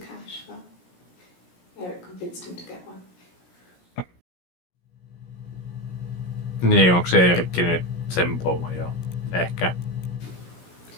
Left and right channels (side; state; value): right; late; 17 ms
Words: but Eric convinced him to get one. Niin, onko se Eerikki nyt sen pomo jo? Ehkä.